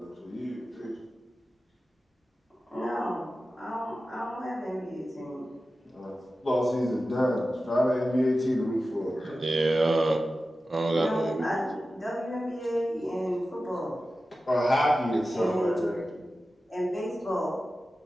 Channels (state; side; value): normal; both; correlation 0.94